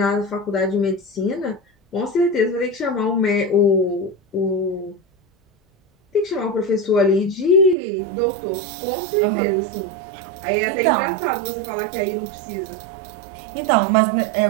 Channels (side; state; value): left; drops out; at 7.8 s